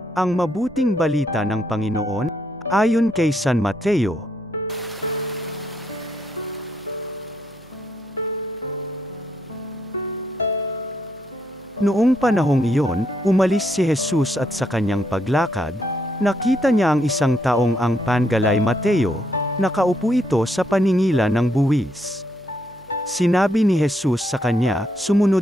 Ang mabuting balita ng Panginoon, ayon kay San Mateo. Noong panahong iyon, umalis si Jesus at sa kanyang paglakad, nakita niya ang isang taong ang pangalay Mateo, nakaupo ito sa paningilan ng buwis. Sinabi ni Jesus sa kanya,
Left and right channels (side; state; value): right; noise; hum, 28 dB below the sound